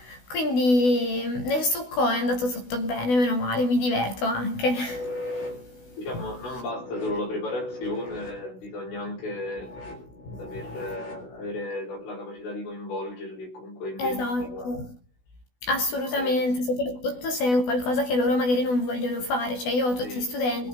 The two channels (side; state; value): right; late; 16 ms